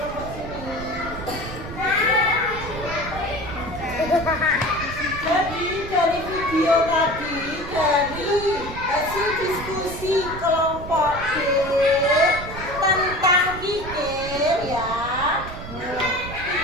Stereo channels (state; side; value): noise; right; rumble, 11 dB below the sound